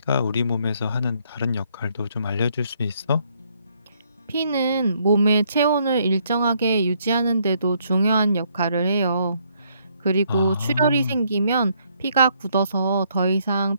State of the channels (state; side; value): inverted; both; correlation -0.70